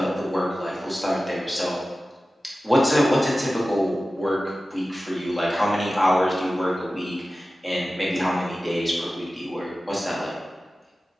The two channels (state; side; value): normal; both; correlation 0.95